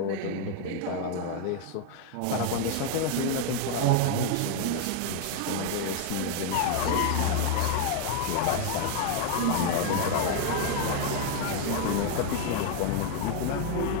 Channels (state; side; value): different; both; correlation 0.00